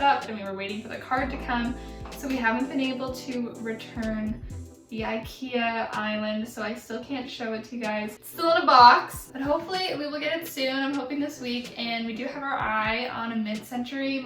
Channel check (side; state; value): both; identical; correlation 1.00